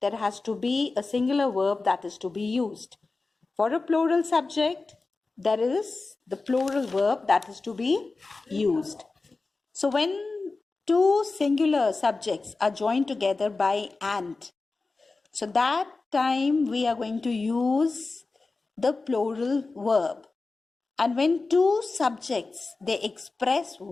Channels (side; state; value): right; quieter; 3.7 dB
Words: there has to be a singular verb that is to be used. For a plural subject, there is the plural verb that is to be used. So when two singular subjects are joined together by and, so that time we are going to use the plural verb. And when two subjects, they express